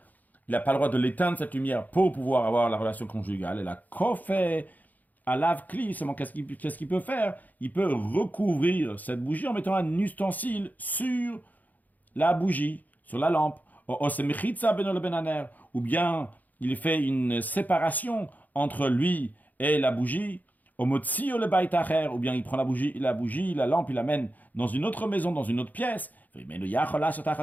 Il n'a pas le droit de l'éteindre, cette lumière, pour pouvoir avoir la relation conjugale. Et la kofé à lave-cli, qu'est-ce qu'il peut faire? Il peut recouvrir cette bougie en mettant un ustensile sur la bougie, sur la lampe. Ou bien il fait une séparation entre lui et la bougie. Ou bien il prend la lampe, il l'amène dans une autre maison, dans une autre pièce. Mais s'il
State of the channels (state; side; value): late; right; 0.081 ms